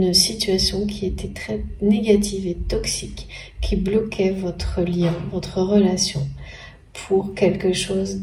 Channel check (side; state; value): both; identical; correlation 1.00